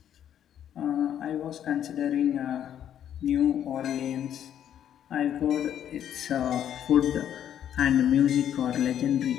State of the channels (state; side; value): quieter; right; 10.0 dB